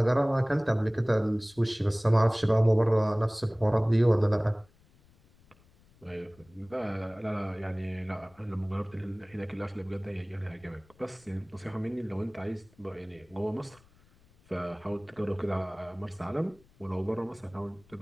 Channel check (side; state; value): left; noise; rumble, 29 dB below the sound